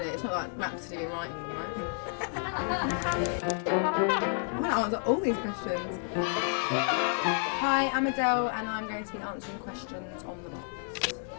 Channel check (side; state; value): right; silent; 57 dB below the other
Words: It's not like Rhapsody and writing them, right? I want to answer all these questions. Hi, I'm Adele and I'm going to be answering questions on the box.